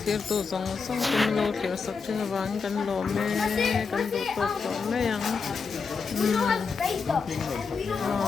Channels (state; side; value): quieter; right; 5.2 dB